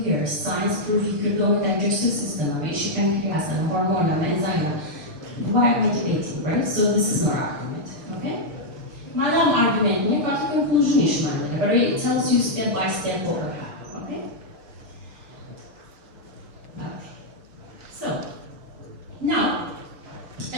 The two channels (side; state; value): left; late; 6.0 ms